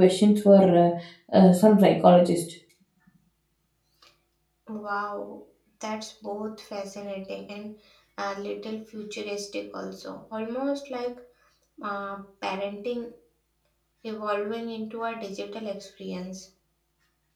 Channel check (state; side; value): identical; both; correlation 1.00